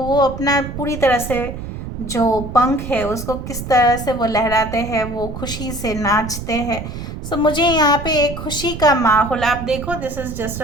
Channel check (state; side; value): noise; right; rumble, 8 dB below the sound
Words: अपना पूरी तरह से जो पंख है उसको किस तरह से वो लहराते हैं, वो खुशी से नाचते हैं। सो मुझे यहाँ पे एक खुशी का माहौल, आप देखो this is just